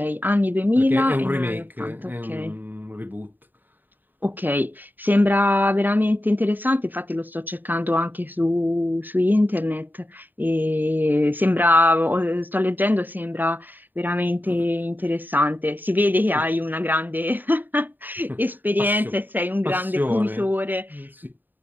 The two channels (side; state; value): left; late; 0.090 ms